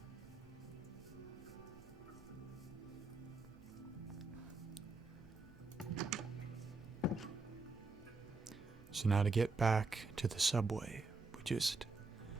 So now to get back to the subway, we just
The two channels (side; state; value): left; quieter; 3.7 dB